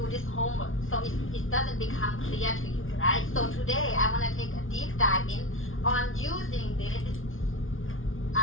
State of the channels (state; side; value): late; right; 0.58 ms